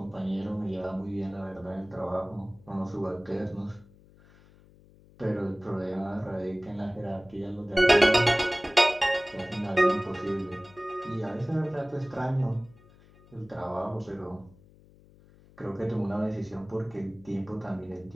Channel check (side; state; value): left; noise; hum, 26 dB below the sound